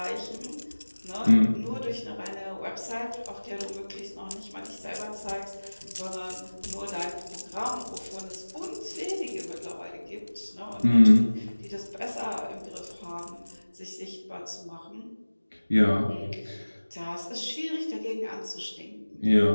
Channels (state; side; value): inverted; both; correlation -1.00